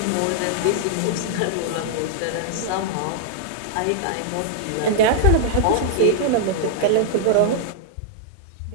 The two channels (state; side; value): different; both; correlation -0.01